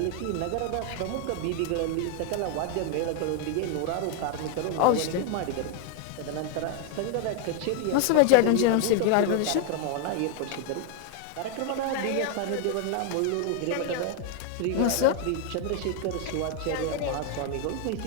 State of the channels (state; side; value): different; both; correlation 0.00